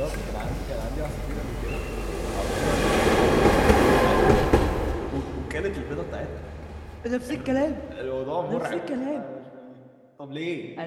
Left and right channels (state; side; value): identical; both; correlation 1.00